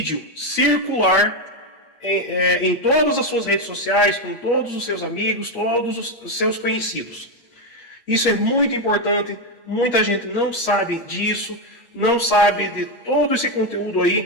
circular em todas as suas redes sociais, com todos os seus amigos, todos os seus conhecidos. Isso é muito importante, muita gente não sabe disso, não sabe de todo esse conteúdo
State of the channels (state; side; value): late; right; 8.5 ms